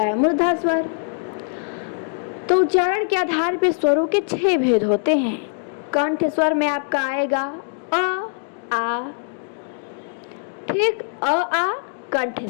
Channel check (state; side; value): silent; right; digital silence